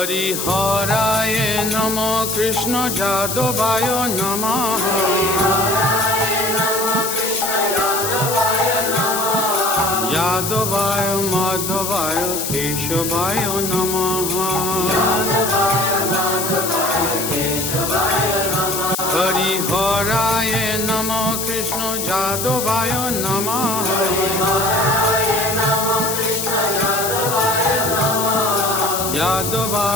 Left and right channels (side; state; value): left; noise; hiss, 3 dB below the sound